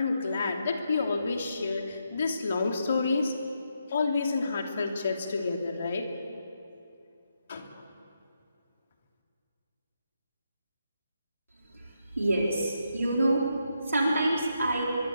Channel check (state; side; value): inverted; both; correlation -0.82